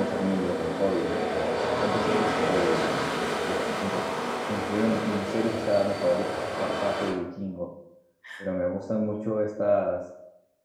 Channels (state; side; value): identical; both; correlation 1.00